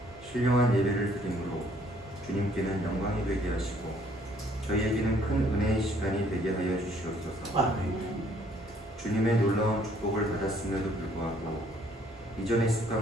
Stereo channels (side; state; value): both; normal; correlation 0.63